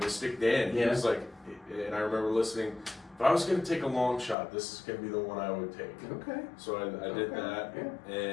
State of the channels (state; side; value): drops out; right; at 4.4 s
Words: Dan. He was like, and I remember listening, if I was going to take a long shot, this is going to be the one I would take. Okay. So I did that. Yeah.